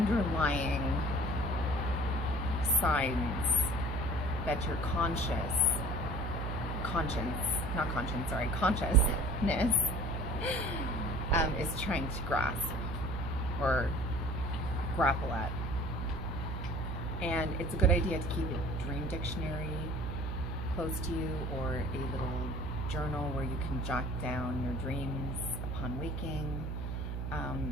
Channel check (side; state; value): right; noise; hum, 3 dB below the sound